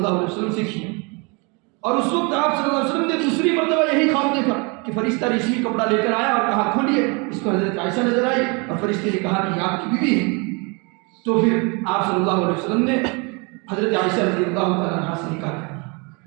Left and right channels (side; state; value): left; quieter; 31.1 dB